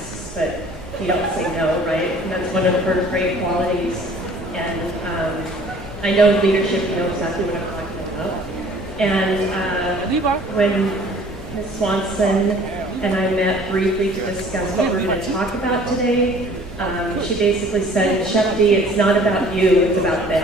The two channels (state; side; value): normal; both; correlation 0.52